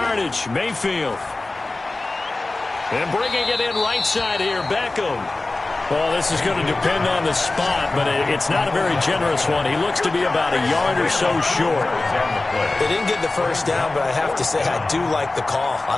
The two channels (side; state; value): right; quieter; 3.1 dB